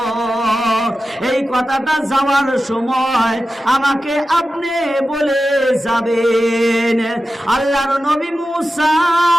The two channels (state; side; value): normal; both; correlation 0.93